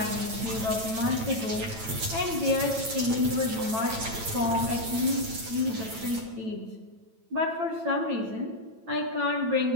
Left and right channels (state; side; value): late; left; 9.0 ms